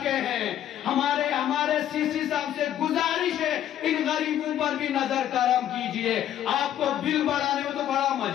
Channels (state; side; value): quieter; right; 11.2 dB